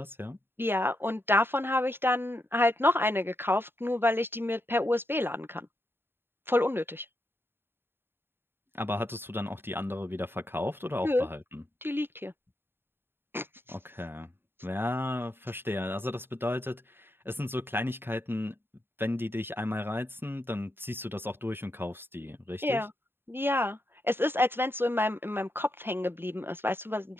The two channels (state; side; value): late; left; 0.11 ms